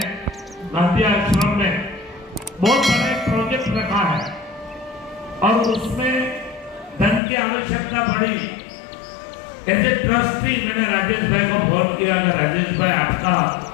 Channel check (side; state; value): right; drops out; at 7.2 s